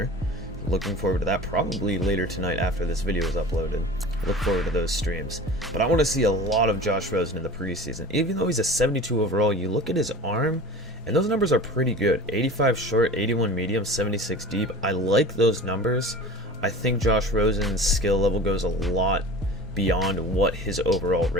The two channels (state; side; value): normal; both; correlation 0.37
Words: Looking forward to that probably later tonight after this video is uploaded. Look forward to those streams. But I want to see a lot of Josh Rosen in the preseason. Even though he's a 72 overall, you look at his arm, and those numbers are pretty good. 85 short, 81 medium, 76 deep. I like those numbers. I think Josh Rosen's skill level goes a lot beyond what his overall